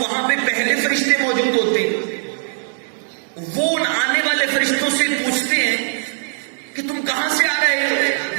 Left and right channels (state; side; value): silent; left; 66 dB below the other